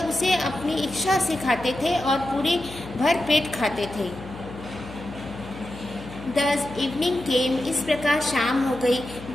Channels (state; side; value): noise; left; hum, 14 dB below the sound